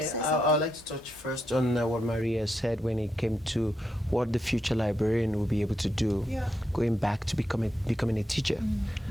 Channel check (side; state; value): both; normal; correlation 0.83